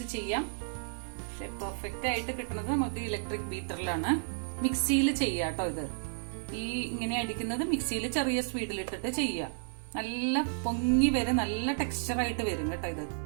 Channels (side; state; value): left; silent; 56 dB below the other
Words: ചെയ്യാം. പക്ഷെ പെർഫെക്റ്റ് ആയിട്ട് കിട്ടുന്നത് നമുക്ക് ഇലക്ട്രിക് ബീറ്ററിലാണ്. മിക്സിയിൽ ചെയ്യാം കേട്ടോ. ഇത് ഈ ഇങ്ങനെ അടിക്കുന്നത് മിക്സിയിൽ ചെറിയ സ്പീഡിലിട്ടിട്ട് ചെയ്യാം. നല്ല പൊങ്ങി വരും, നല്ല ടെക്സ്ചർ ആയിട്ട് വരും കേട്ടോ. ഇത്